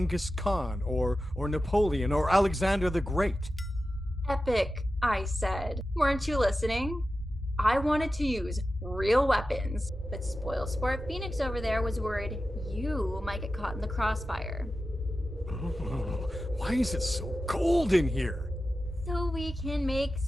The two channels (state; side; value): normal; both; correlation 0.93